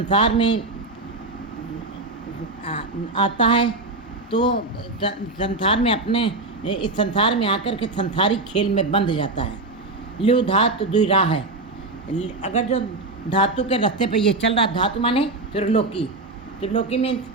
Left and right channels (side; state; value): left; quieter; 3.2 dB